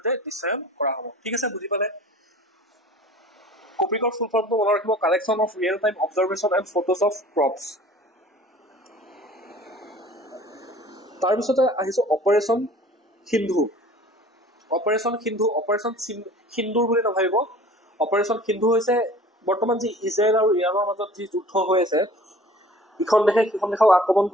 দৃশ্যায়ন কৰা হ'ব। ঠিক আছে, বুজি পালে? কপিকৰ ফুল ফৰ্মটো মনত ৰাখিব, collection of real time observation and photos of crops. তাৰপিছতে আহিছো অপাৰেশ্যন সিন্ধু। অপাৰেশ্যন সিন্দুৰ বুলি নাভাবিব। অপাৰেশ্যন সিন্ধু হৈছে বৰ্তমান যি ইজৰাইল আৰু ইৰাণৰ মাজত যি যুদ্ধ হৈ আছে, ইখন দেশে সিখন দেশক আক্ৰমণ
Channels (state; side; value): normal; both; correlation 0.47